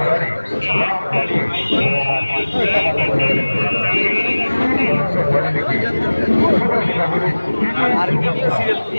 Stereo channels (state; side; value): inverted; both; correlation -1.00